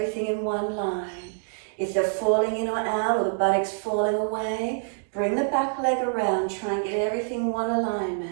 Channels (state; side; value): silent; left; digital silence